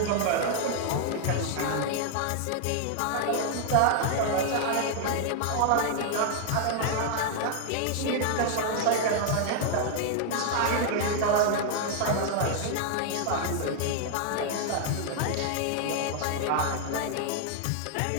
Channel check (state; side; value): different; both; correlation 0.00